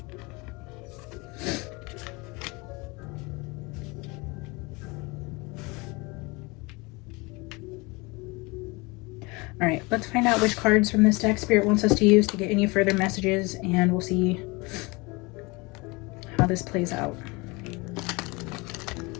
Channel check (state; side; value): quieter; right; 25.9 dB